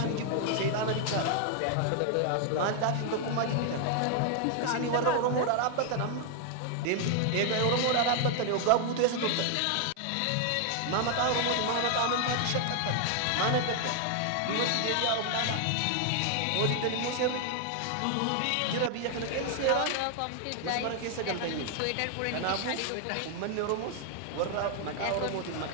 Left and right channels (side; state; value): both; different; correlation 0.00